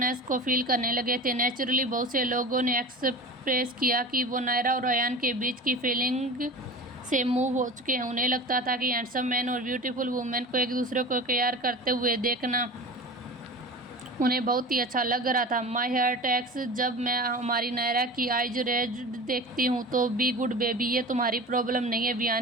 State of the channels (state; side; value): normal; both; correlation 0.34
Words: को फील करने लगे थे। नेचुरली बहुत से लोगों ने एक्सप्रेस किया कि वो नायरा और अयान के बीच की फीलिंग से मूव हो चुके हैं। उन्हें लगता था कि हैंडसम मैन और ब्यूटीफुल वुमेन को एक दूसरे को प्यार करते हुए देखना उन्हें बहुत ही अच्छा लग रहा था। माई हार्ट एक्स, जब मैं हमारी नायरा की आइज रेज देखती हूँ तो बी गुड बेबी, ये तुम्हारी प्रॉब्लम नहीं है।